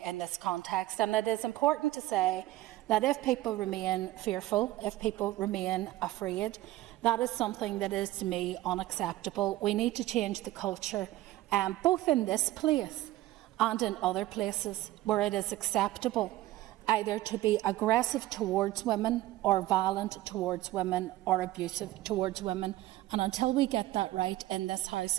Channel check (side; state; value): left; quieter; 16.3 dB